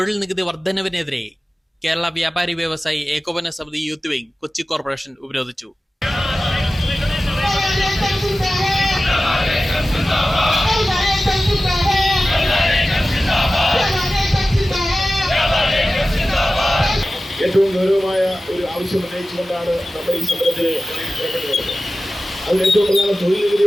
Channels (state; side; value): normal; both; correlation 0.95